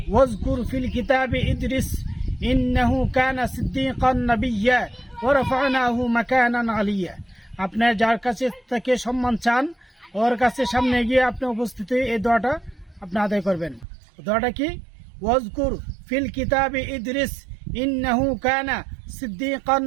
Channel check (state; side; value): drops out; left; at 13.9 s